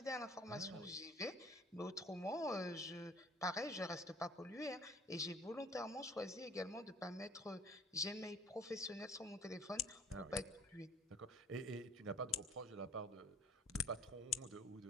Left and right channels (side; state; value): both; normal; correlation 0.53